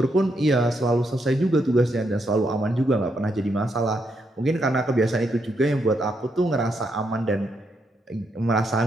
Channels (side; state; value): both; normal; correlation 0.79